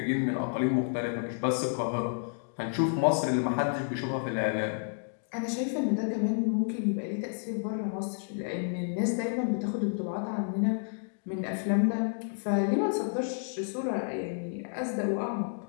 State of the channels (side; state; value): right; silent; digital silence